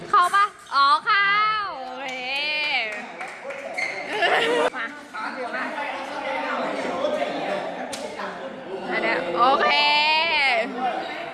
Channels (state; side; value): identical; both; correlation 1.00